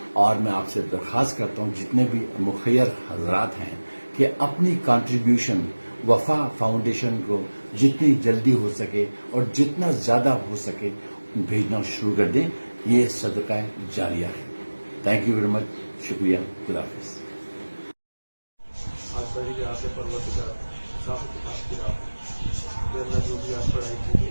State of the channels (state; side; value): inverted; both; correlation -1.00